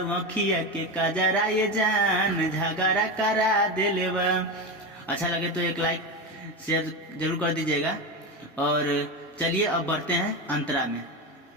आँखिया के कजरा ये जान झगड़ा करा देले बा। अच्छा लगे तो एक लाइक शेयर जरूर कर दीजिएगा। और चलिए अब बढ़ते हैं अंतरा में।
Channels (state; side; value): normal; both; correlation 0.18